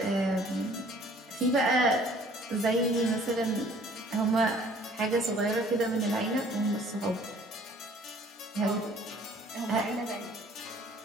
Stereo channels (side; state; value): both; normal; correlation 0.55